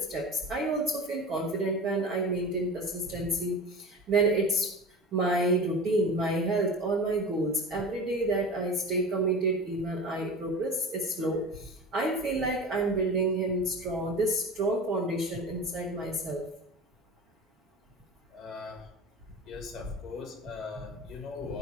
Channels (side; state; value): both; normal; correlation 0.32